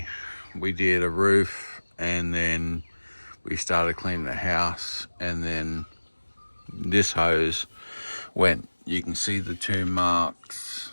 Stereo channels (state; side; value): inverted; both; correlation -1.00